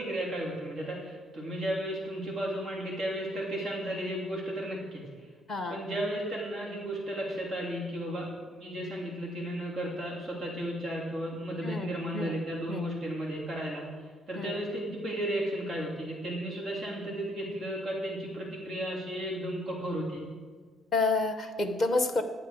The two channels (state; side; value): normal; both; correlation 0.68